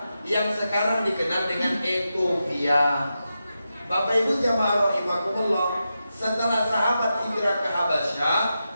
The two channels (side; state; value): both; inverted; correlation -0.89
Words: yang sekarang dikenal dengan Ethiopia. Bapak Ibu jamaah rahimakumullah, setelah sahabat hijrah ke Habasyah,